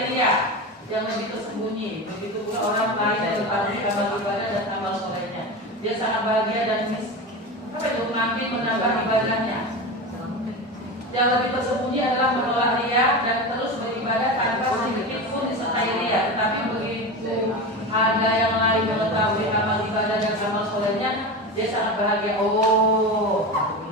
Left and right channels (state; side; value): normal; both; correlation 0.24